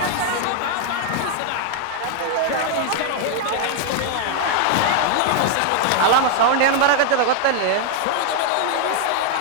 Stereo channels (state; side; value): different; both; correlation 0.00